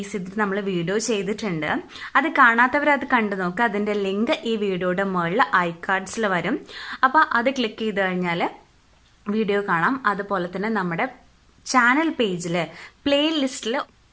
ചെയ്തിട്ട് നമ്മൾ വീഡിയോ ചെയ്തിട്ടുണ്ട്. അത് കാണാത്തവരത് കണ്ടു നോക്കുക. അതിൻ്റെ ലിങ്ക് ഈ വീഡിയോയുടെ മുകളിൽ ഐകാർഡ്സിൽ വരും. അപ്പോൾ അത് ക്ലിക്ക് ചെയ്ത് കഴിഞ്ഞാൽ വീഡിയോ കാണാം. അതുപോലെ തന്നെ നമ്മുടെ ചാനൽ പേജിൽ പ്ലേലിസ്റ്റിൽ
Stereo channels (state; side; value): identical; both; correlation 1.00